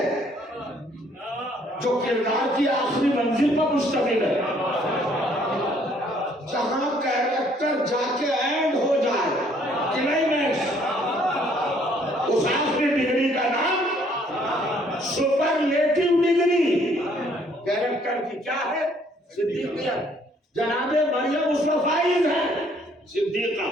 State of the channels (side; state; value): both; normal; correlation 0.63